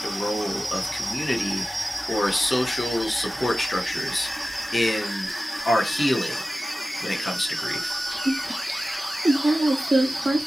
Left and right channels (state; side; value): normal; both; correlation 0.95